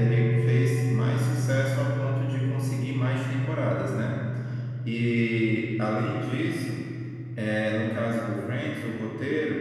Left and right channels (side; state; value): both; identical; correlation 1.00